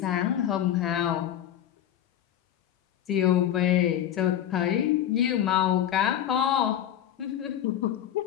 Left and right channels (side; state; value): right; quieter; 10.9 dB